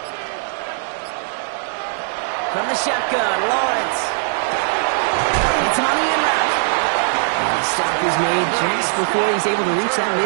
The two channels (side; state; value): left; silent; 66 dB below the other